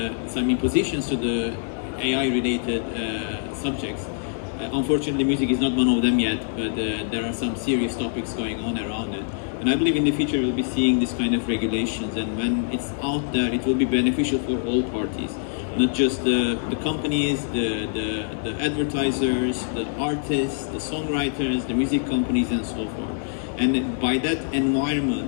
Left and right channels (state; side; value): silent; right; digital silence